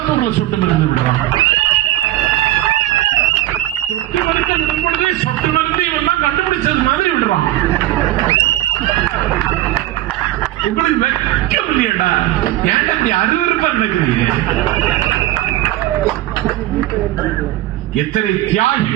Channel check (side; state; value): left; quieter; 15.4 dB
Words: சொட்டு மருந்து விடுறான். சொட்டு மருந்து இவன் தான் கண்டுபிடிச்சது மாதிரி விடுறான். உங்களுக்கு வெக்கம் இல்லையடா? ஏன் அப்படி அருவருப்பா நடக்கிறீங்க? எத்தனை